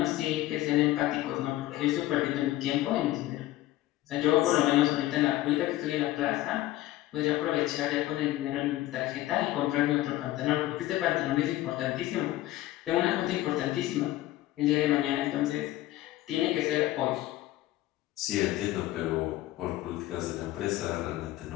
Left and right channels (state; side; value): quieter; right; 15.7 dB